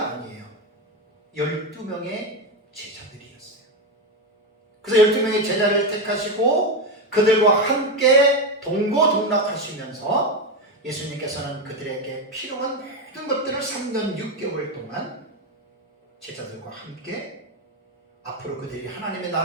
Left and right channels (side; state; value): both; normal; correlation 0.12